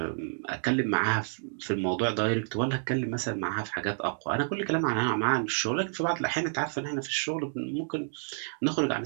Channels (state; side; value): silent; left; digital silence